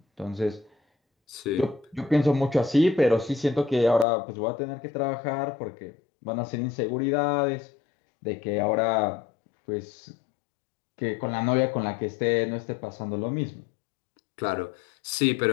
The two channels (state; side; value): drops out; right; at 4.0 s